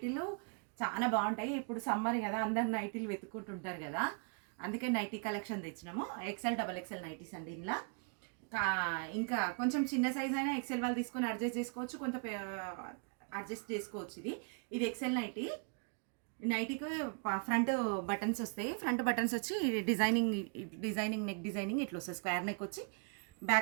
చాలా బాగుంటాయి. ఇప్పుడు సమ్మర్ కదా, అందరు నైటీలు వెతుక్కుంటుంటారు కదా, అందుకే నైటీ కలెక్షన్ తెచ్చినాము. ఎక్సెల్ డబల్ ఎక్సెల్ నైటీస్ అండి. ఇలా ఇంకా కొంచెం చిన్న సైజ్ అయినా ఎక్సెల్ వాళ్ళు తీసుకొని అడ్జస్ట్ చేసుకోవచ్చు, కొంత అడ్జస్ట్ చేసుకోవచ్చు. ఇది ఎక్సెల్ నైటీ. నైటీకి ఫ్రంట్ బటన్స్ వస్తాయి. ఫ్రంట్ బటన్స్ వచ్చి డిజైనింగ్ నెక్ డిజైనింగ్ ఇట్లా వస్తుంది. స్క్వేర్ నెక్ వచ్చి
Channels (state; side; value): quieter; left; 38.5 dB